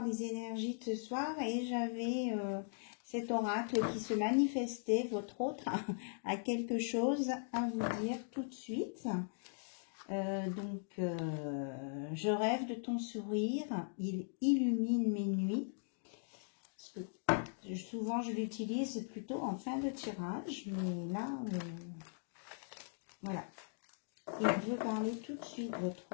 les énergies de ce soir. Et j'avais cet oracle qui se manifestait, votre autre, a quelque chose à vous dire tout de suite. Je rêve de ton sourire, il illumine mes nuits. Parce que souvent, je l'utilise plutôt en fin de tirage, mais là, voilà. Il veut parler tout de suite, votre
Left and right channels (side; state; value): right; silent; digital silence